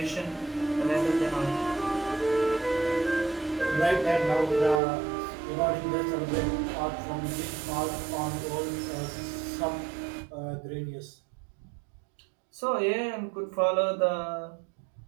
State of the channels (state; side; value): drops out; left; at 4.8 s